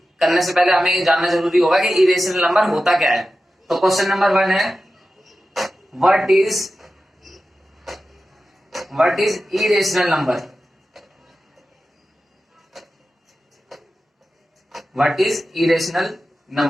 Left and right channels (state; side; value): normal; both; correlation 0.93